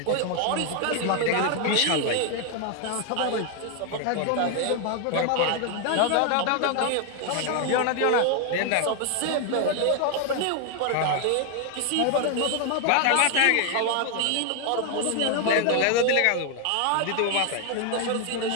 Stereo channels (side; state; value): both; different; correlation 0.01